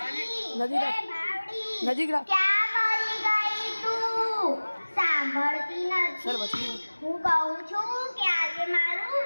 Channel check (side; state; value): both; inverted; correlation -1.00